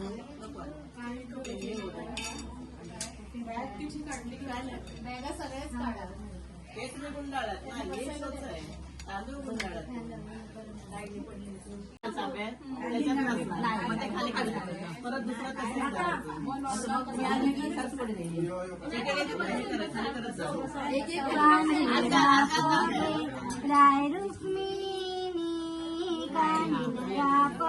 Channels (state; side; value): identical; both; correlation 1.00